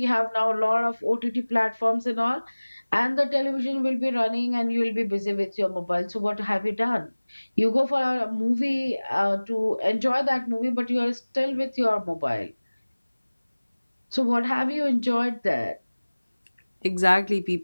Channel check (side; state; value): both; inverted; correlation -1.00